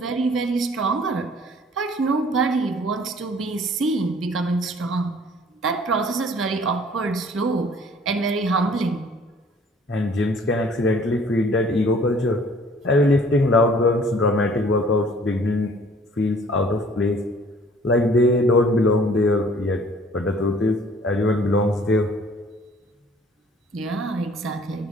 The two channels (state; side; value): normal; both; correlation 0.54